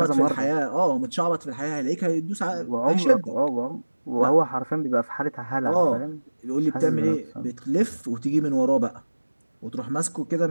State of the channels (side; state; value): both; inverted; correlation -1.00